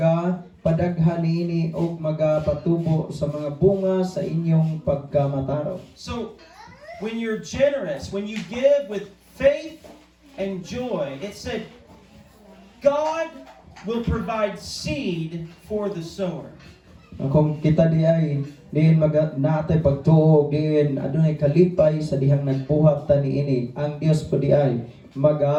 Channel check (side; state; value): both; identical; correlation 1.00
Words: niini o magapatubo sa mga bunga sa inyong pagkamataraw. So when you're generous, when you give with faith and joy, it said God will provide seed for the sower. Kung kita di ay diin natay pagtuog diin adunay kalipay sa dihang nagbuhat ta niini ang Dios po di ay